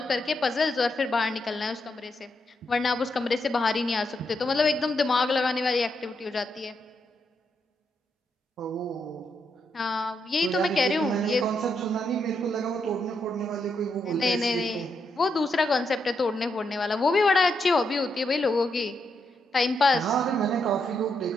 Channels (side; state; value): both; normal; correlation 0.81